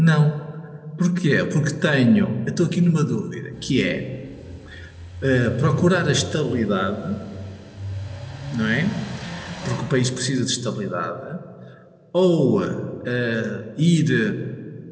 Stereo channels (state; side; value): identical; both; correlation 1.00